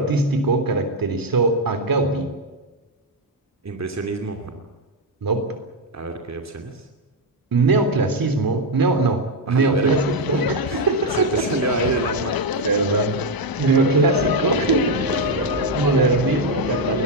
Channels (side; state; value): both; normal; correlation 0.05